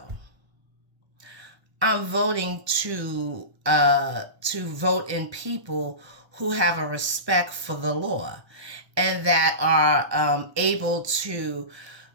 I'm voting to vote in people who have a respect for the law and that are able to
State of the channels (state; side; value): late; left; 1.2 ms